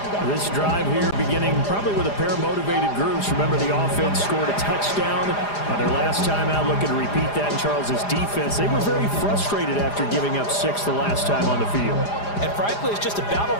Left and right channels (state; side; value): late; right; 4.9 ms